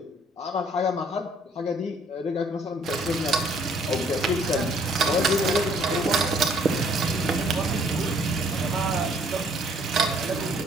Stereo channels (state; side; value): normal; both; correlation 0.62